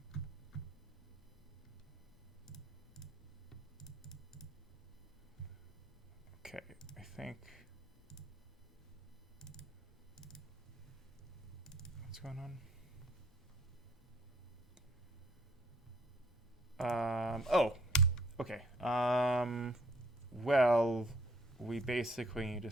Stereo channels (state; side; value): normal; both; correlation 0.62